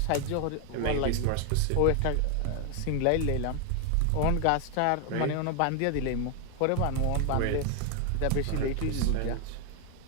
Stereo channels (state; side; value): different; both; correlation 0.00